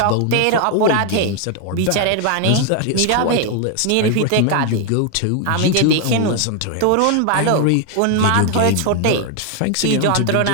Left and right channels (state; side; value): different; both; correlation 0.01